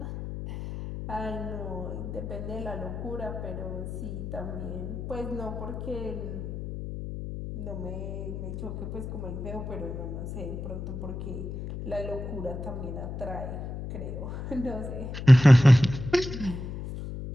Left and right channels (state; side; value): noise; left; hum, 7 dB below the sound